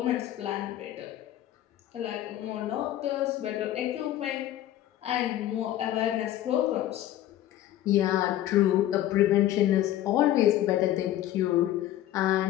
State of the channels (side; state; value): right; quieter; 13.1 dB